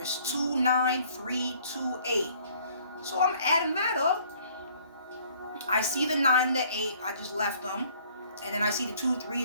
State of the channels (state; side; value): inverted; both; correlation -0.58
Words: is 29328. So I'm adding that up. I see the 9 and the 8, I just left them. And then I see the 2, 3,